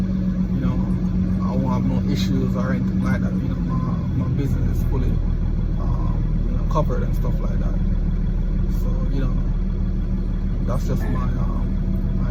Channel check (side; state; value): both; identical; correlation 1.00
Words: won't have no issues or anything like that. My business is fully covered and stuff like that. So that's just my